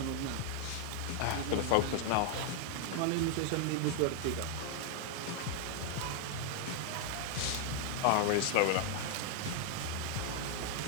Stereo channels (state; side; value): different; both; correlation 0.00